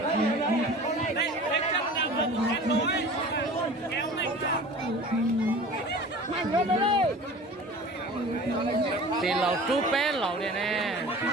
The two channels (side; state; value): both; normal; correlation 0.40